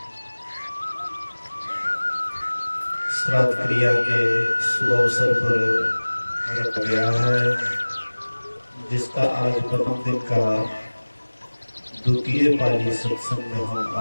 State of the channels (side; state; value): both; inverted; correlation -1.00